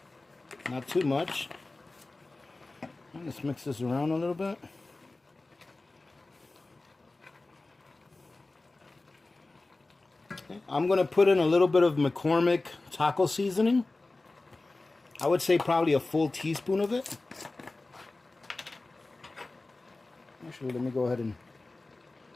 Not too much. Let's mix this around a little bit. Okay. I'm going to put in a little bit of McCormick taco seasoning. I would say probably a full teaspoon of it. Actually, let me go ahead and...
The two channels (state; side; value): quieter; right; 3.2 dB